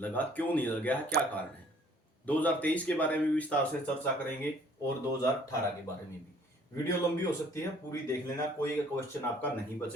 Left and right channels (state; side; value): normal; both; correlation 0.58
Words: क्यों नहीं लग गया है, क्या कारण है? 2023 के बारे में भी विस्तार से चर्चा करेंगे और 2018 के बारे में भी। वीडियो लंबी हो सकती है, पूरी देख लेना, कोई क्वेश्चन आपका नहीं